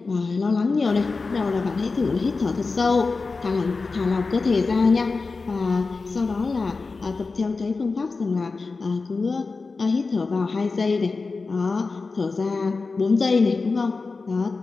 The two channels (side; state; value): right; quieter; 4.1 dB